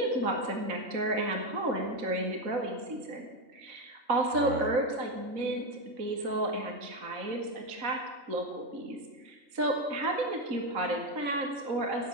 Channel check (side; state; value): left; late; 4.0 ms